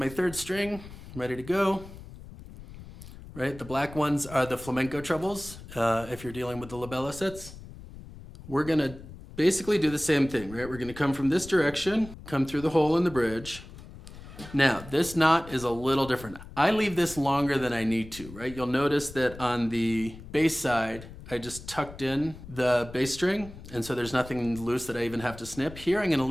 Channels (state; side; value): noise; left; rumble, 16 dB below the sound